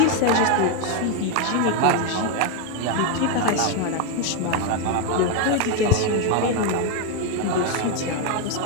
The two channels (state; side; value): different; both; correlation 0.01